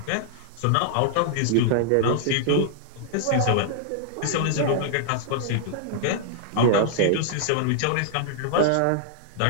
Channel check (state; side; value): different; both; correlation -0.01